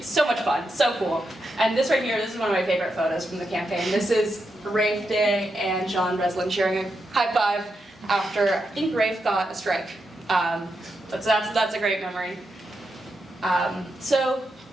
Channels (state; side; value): normal; both; correlation 0.85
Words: so much fun, so cool. And this right here, this is one of my favorite photos from the campaign. This is Rafe Day and John Breslin sharing a high five after, I think Rafe got a strike. That's a great memory. So